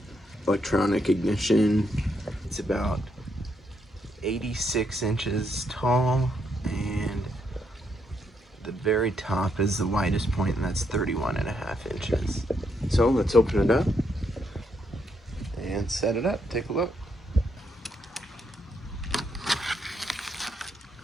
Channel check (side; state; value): both; normal; correlation 0.77